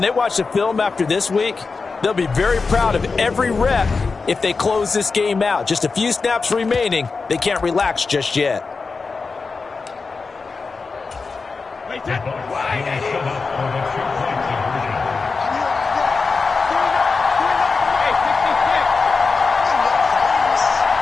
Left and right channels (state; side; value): quieter; right; 4.4 dB